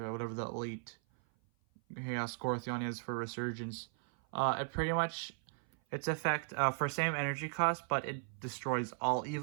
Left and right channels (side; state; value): left; silent; 53 dB below the other